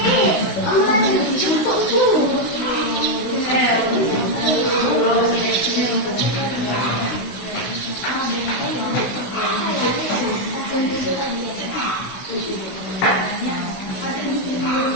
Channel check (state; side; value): late; right; 16 ms